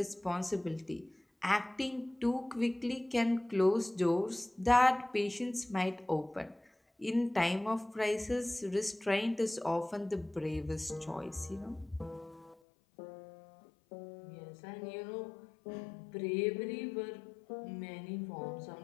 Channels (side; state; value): right; drops out; at 12.6 s